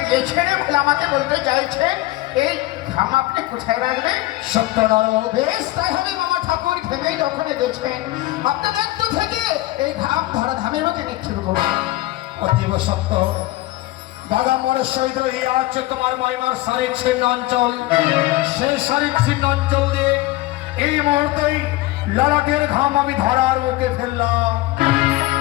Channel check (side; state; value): right; quieter; 18.2 dB